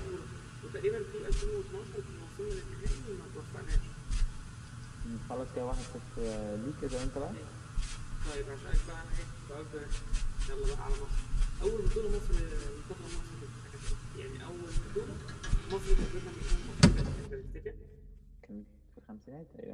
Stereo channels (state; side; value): identical; both; correlation 1.00